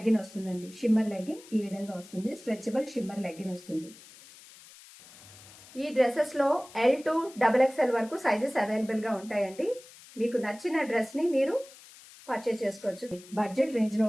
వస్తుందండి. షిమ్మర్ లెగ్గిన్ ఈ విధంగా వస్తుంది. స్ట్రెచబుల్ షిమ్మర్ లెగ్గిన్ వస్తుంది. ఈ డ్రెస్సెస్ లో L to XXL వరకు సైజెస్ అవైలబుల్ గా ఉంటాయండి. మీకు నచ్చిన డ్రెస్ ని మీరు పర్చేస్ చేసుకోవచ్చు. బడ్జెట్ రేంజ్ లో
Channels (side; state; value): left; noise; hiss, 21 dB below the sound